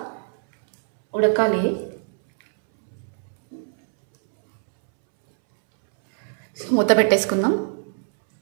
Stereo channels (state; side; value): silent; left; 64 dB below the other